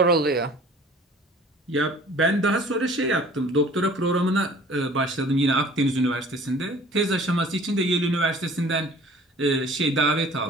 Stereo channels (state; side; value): normal; both; correlation 0.49